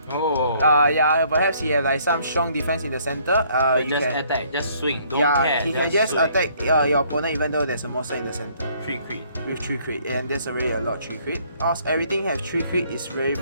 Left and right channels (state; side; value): inverted; both; correlation -0.63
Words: yeah, perhaps he have like some strong defense in the center. You just can attack, just swing, don't yeah, care. He can just swing. attack your opponent even though there's a monster in the center. 3 crit. With 3 crit, and there's already a lot 3 crit. Also, everything has 3 crit is very